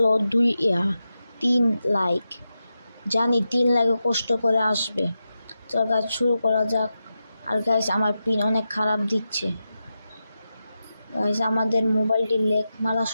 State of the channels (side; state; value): both; inverted; correlation -0.90